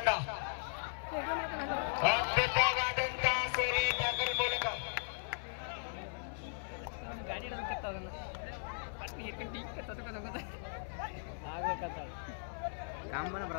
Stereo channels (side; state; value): right; silent; 53 dB below the other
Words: ಅದ್ಭುತವಾದಂತ ಸೋರೆ ಟ್ಯಾಕಲ್ ಮೂಲಕ ಕಾಂಬನ